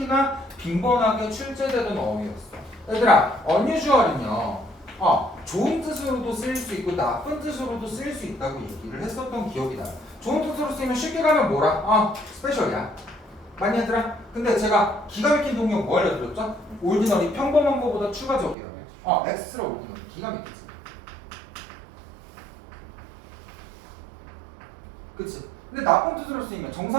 빈번하게 출제되던 어휘였어. 얘들아 unusual은요 좋은 뜻으로도 쓰일 수 있고 나쁜 뜻으로도 쓰일 수 있다고 얘기를 했었던 기억이 나요. 좋은 뜻으로 쓰이면 쉽게 가면 뭐라? 스페셜이야. 맞니 얘들아? 근데 제가 기가 막힌 동력 뭐 알려드렸죠? 올디너리 평범한 것보다 추가적이라고. 엑스트라 올디너리 기가 막히지. 그치? 근데 나쁜 뜻으로 쓰이면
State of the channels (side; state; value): left; drops out; at 18.6 s